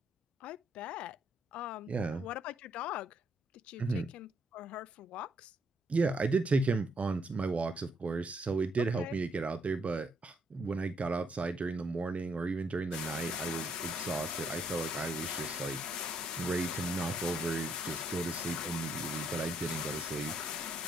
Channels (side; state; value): both; normal; correlation 0.72